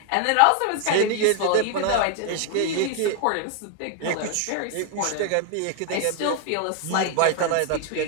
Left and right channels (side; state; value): both; different; correlation 0.00